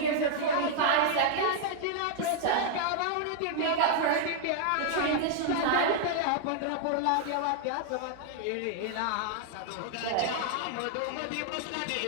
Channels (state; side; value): different; both; correlation -0.01